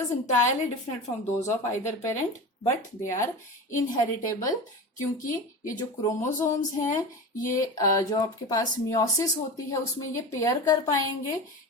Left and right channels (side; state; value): both; normal; correlation 0.28